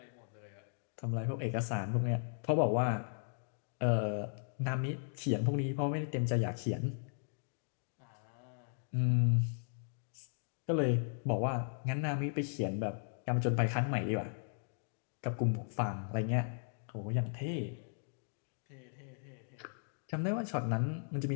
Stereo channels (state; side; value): silent; right; digital silence